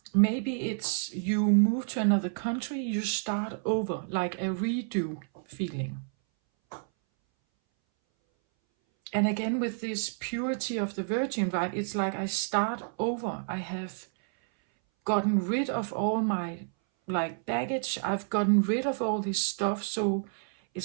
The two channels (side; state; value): left; silent; 58 dB below the other